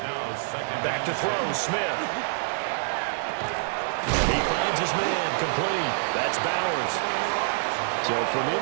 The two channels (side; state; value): left; silent; digital silence